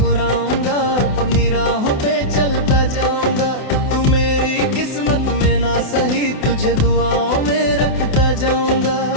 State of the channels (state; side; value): late; right; 28 ms